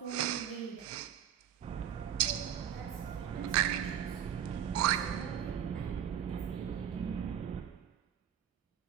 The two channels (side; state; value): left; quieter; 9.6 dB